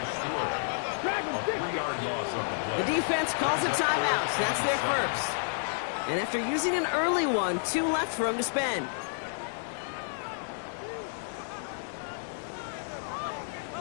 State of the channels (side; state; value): right; silent; digital silence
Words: The defense calls a timeout. So that's their first. And after using an early one, 2 left for him to spend.